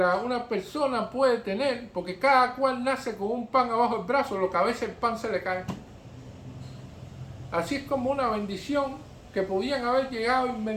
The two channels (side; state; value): both; identical; correlation 1.00